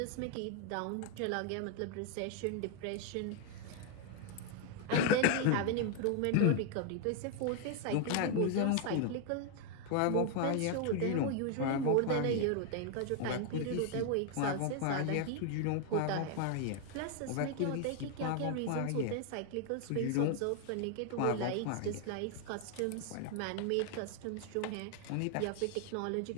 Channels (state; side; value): different; both; correlation 0.01